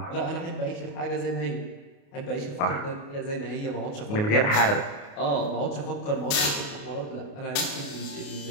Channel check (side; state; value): right; late; 28 ms